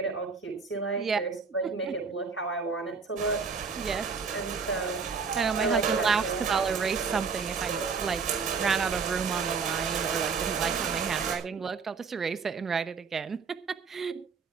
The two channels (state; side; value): quieter; left; 5.3 dB